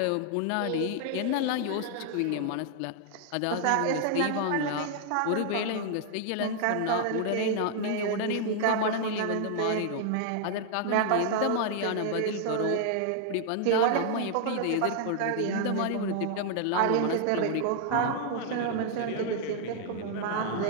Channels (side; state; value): both; different; correlation 0.00